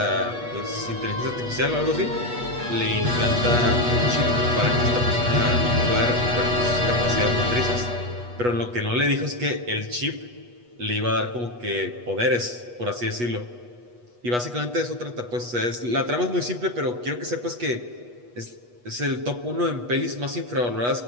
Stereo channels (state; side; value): late; left; 8.3 ms